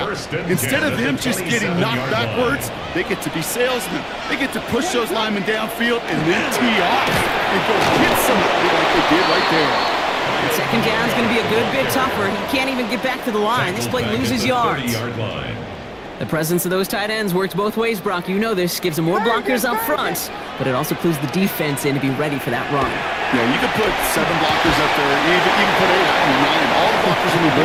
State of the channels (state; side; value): identical; both; correlation 1.00